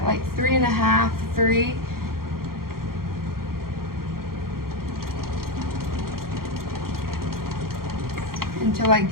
like 3.5, 3. Until I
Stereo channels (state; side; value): late; left; 0.92 ms